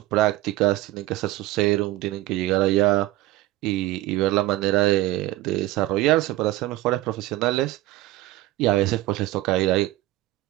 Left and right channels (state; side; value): quieter; left; 17.2 dB